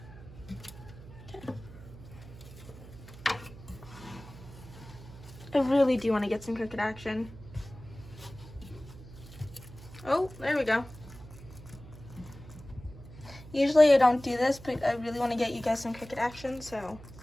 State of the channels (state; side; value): noise; right; hum, 17 dB below the sound